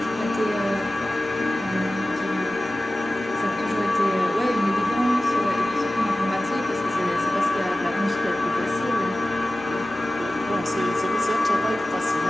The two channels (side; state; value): both; normal; correlation 0.96